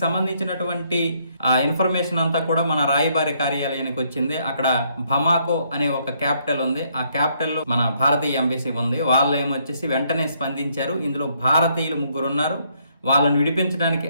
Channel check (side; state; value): both; inverted; correlation -0.71